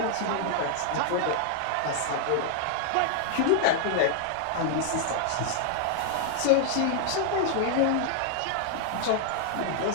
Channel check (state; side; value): different; both; correlation 0.00